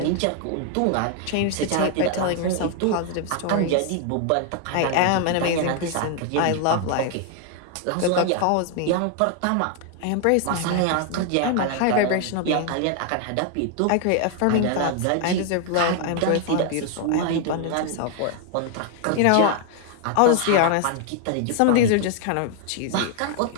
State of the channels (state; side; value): different; both; correlation 0.00